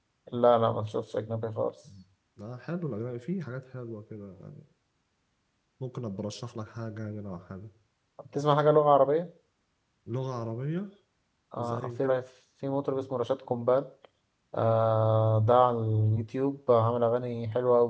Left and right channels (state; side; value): identical; both; correlation 1.00